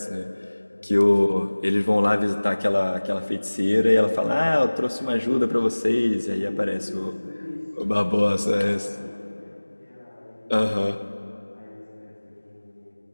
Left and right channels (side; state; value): both; inverted; correlation -1.00